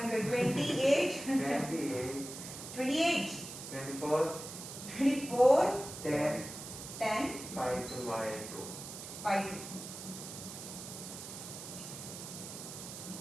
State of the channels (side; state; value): right; noise; hiss, 10 dB below the sound